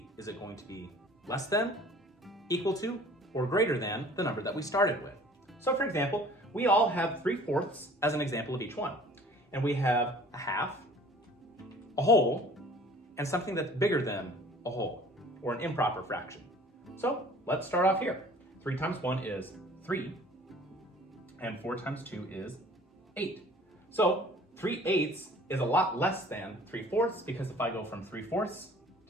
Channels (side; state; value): both; normal; correlation 0.49